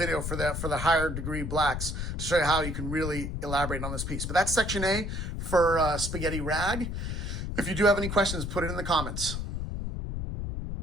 for the higher degree blacks to show you how you can really elaborate on this piece. But that's section A for Spaghetti Rag. If you do have any questions, put it in the comments.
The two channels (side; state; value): left; noise; rumble, 4 dB below the sound